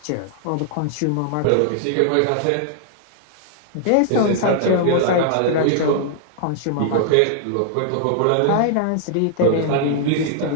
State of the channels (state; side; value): different; both; correlation -0.01